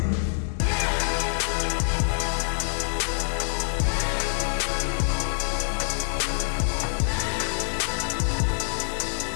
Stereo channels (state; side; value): silent; right; 61 dB below the other